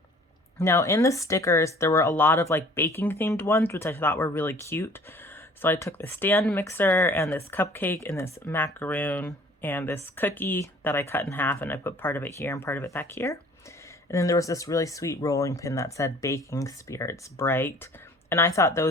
Now in the stickers, there were a lot of like baking themed ones, which I thought were really cute. So I took the stand mixer and this cupcake and this macaroon and this cookie that I cut in half, and I put part of it here and part of it back here. And then there was this really sweet rolling pin that said Baking Spirits Bright. And I thought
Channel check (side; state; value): both; normal; correlation 0.51